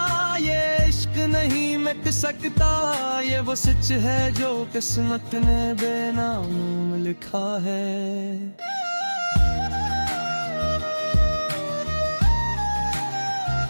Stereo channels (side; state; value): both; inverted; correlation -1.00